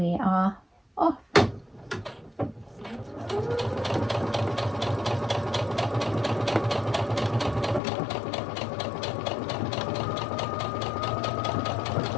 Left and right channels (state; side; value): drops out; right; at 7.8 s